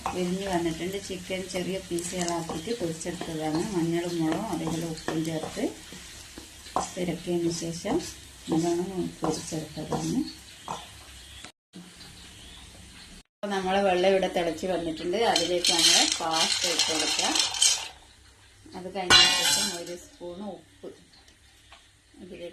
വിരിഞ്ഞ് വന്നിട്ടുണ്ട്. ചിക്കൻ ചെറിയ പീസുകളാക്കിയിട്ട് പൊരിച്ചെടുത്തതാണ്. മഞ്ഞളും മുളകും അതേപോലെ ഉപ്പും ചേർത്ത് ഇറക്കിയതിന് ശേഷം നല്ലോണം പൊരിച്ചെടുത്തതാണ്. അപ്പോൾ നമ്മളെ വെള്ളം ഇവിടെ തിളച്ച് വന്നിട്ടുണ്ട്. അതിലേക്ക് നമ്മൾ പാസ്ത ഇട്ട് കൊടുക്കാം. അത് കഴിഞ്ഞ ശേഷം 1 സ്പൂൺ ഉപ്പ്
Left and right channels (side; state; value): both; identical; correlation 1.00